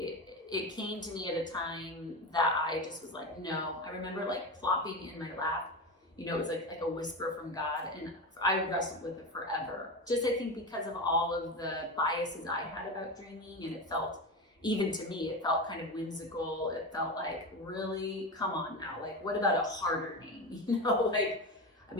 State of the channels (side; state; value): both; normal; correlation 0.21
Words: came to me at a time that I just was like, no. I remember plopping in my lap. It was like a whisper from God, and I wrestled with it forever. Just I think because of all of the biases I had about dreaming, and it felt, even to me, it felt kind of whimsical. It felt like, really, come on now, what about a harder name? I